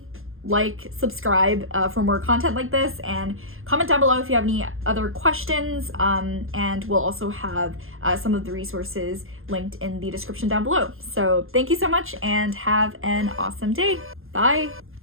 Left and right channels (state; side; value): late; left; 0.60 ms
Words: like, subscribe for more content like this, and comment down below if you have any other questions, and we'll also have some of the resources linked in the description down below. So thank you so much and have an awesome day. Bye.